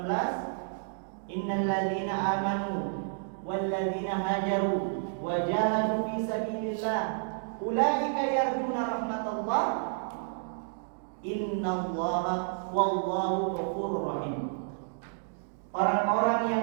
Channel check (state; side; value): silent; left; digital silence